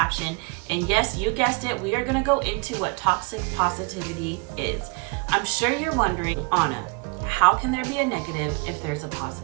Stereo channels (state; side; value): quieter; left; 32.4 dB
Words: And yes, you guessed it, we are going to go into what toxic positivity is. I'm sure you're wondering, Anna, how can there be a negative if there's a